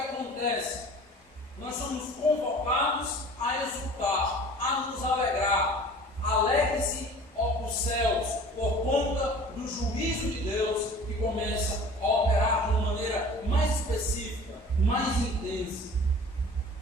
Nós somos convocados a exultar, a nos alegrar. Alegre-se, ó os céus, por conta do juízo de Deus que começa a operar de uma maneira mais específica, mais intensa.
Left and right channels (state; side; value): normal; both; correlation 0.44